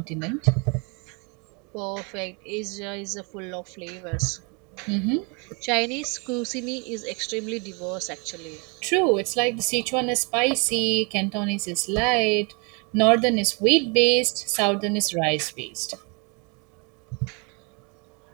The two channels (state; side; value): quieter; left; 33.0 dB